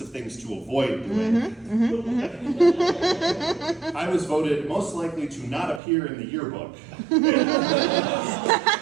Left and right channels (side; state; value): left; drops out; at 5.8 s